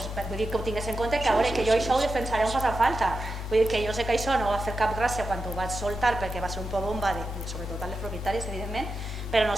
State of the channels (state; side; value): normal; both; correlation 0.89